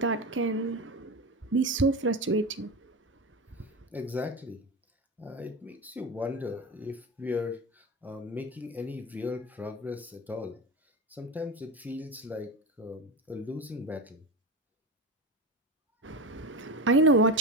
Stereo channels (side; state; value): both; normal; correlation 0.22